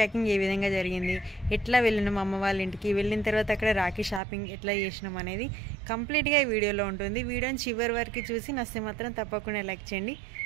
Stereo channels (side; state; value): left; drops out; at 4.2 s